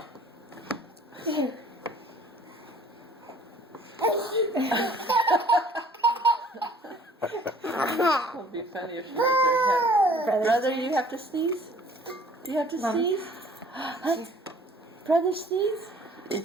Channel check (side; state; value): both; normal; correlation 0.53